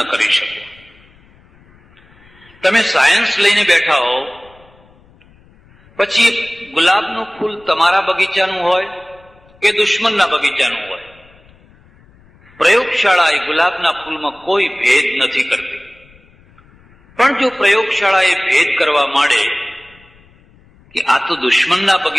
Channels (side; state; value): left; noise; rumble, 29 dB below the sound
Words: કરી શકો. તમે સાયન્સ લઈને બેઠા હો, પછી ગુલાબનું ફૂલ તમારા બગીચાનું હોય કે દુશ્મનના બગીચાનું હોય, પ્રયોગશાળા એ ગુલાબના ફૂલમાં કોઈ ભેદ નથી કરતી. પણ જો પ્રયોગશાળા એ ભેદ કરવા માંડે કે આ તો દુશ્મનના